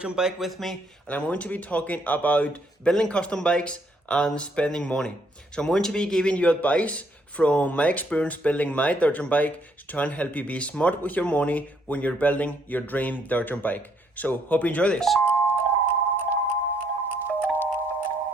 jump bike with me and I'm going to be talking about building custom bikes and spending money. So I'm going to be giving you advice from my experience building my dirt jump bike to try and help you be smart with your money when you're building your dream dirt jump bike. So hope you enjoy this.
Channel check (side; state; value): both; normal; correlation 0.70